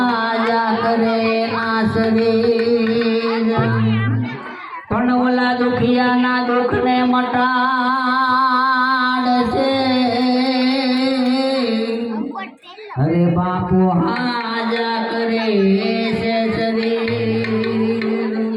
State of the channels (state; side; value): identical; both; correlation 1.00